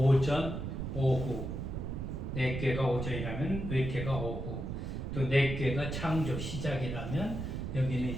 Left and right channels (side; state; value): right; noise; rumble, 4 dB below the sound